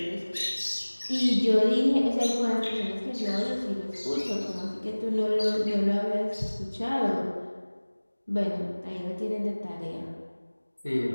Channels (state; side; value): inverted; both; correlation -1.00